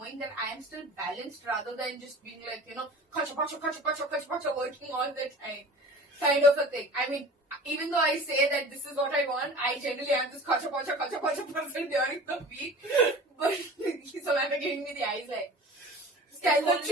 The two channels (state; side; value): normal; both; correlation 0.40